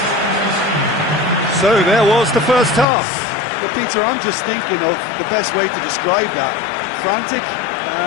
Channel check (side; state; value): right; drops out; at 2.9 s